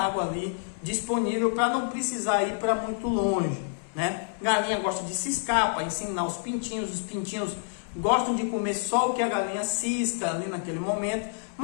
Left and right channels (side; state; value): right; silent; 59 dB below the other